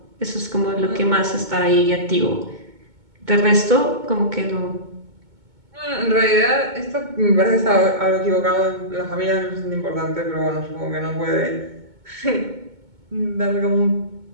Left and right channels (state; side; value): late; left; 2.2 ms